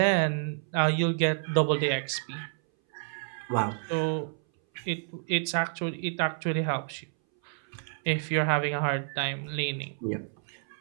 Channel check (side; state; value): left; silent; 58 dB below the other